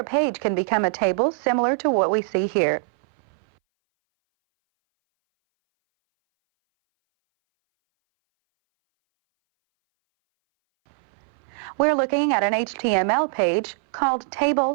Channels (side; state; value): left; silent; 60 dB below the other